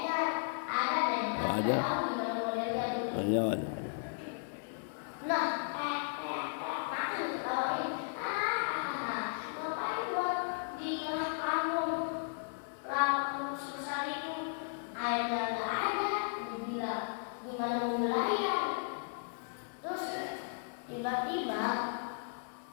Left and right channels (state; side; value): silent; right; digital silence